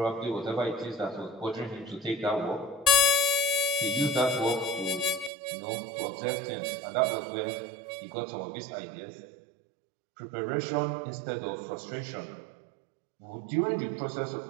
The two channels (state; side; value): drops out; left; at 5.3 s